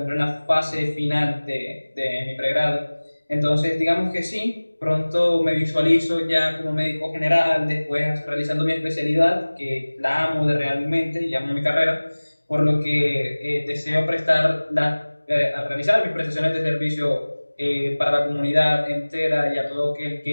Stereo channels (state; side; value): inverted; both; correlation -1.00